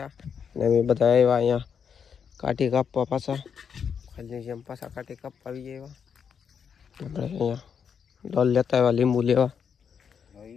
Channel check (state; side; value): quieter; right; 7.1 dB